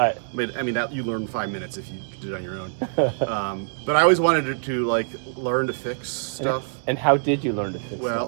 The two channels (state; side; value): silent; left; digital silence